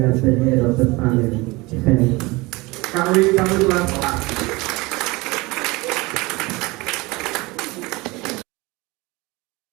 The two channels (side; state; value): left; quieter; 23.2 dB